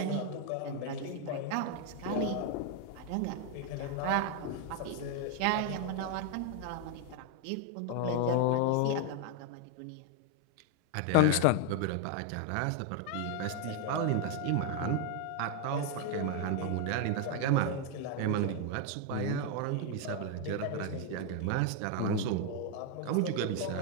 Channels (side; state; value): both; different; correlation 0.01